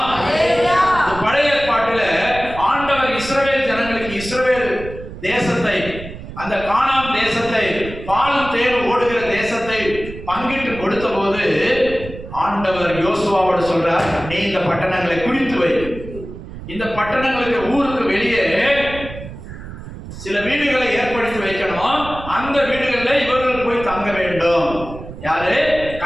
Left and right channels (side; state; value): right; noise; rumble, 12 dB below the sound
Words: கானான் தேசத்தை, பாலும் தேனும் ஓடுகிற தேசத்தை பங்கிட்டு கொடுத்த போது ஆண்டவர் யோசுவாவோட சொல்றார், நீ இந்த பட்டணங்களை குறித்து வை. இந்த பட்டணங்களுக்கு ஊருக்கு வெளியே சில வீடுகளை ஏற்படுத்தி வைக்கணும். அந்த வீடுகளில் இவர்கள் போய் தங்க வேண்டும். யாரு?